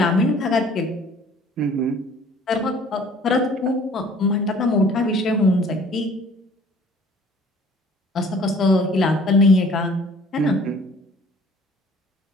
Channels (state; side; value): normal; both; correlation 0.53